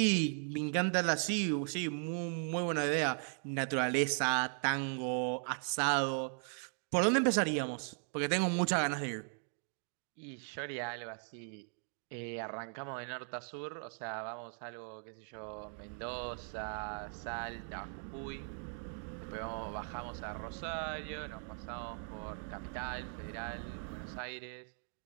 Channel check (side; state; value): left; silent; 52 dB below the other